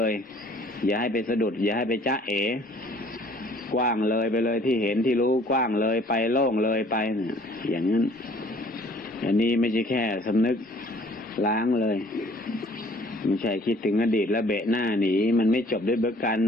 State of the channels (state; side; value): normal; both; correlation 0.56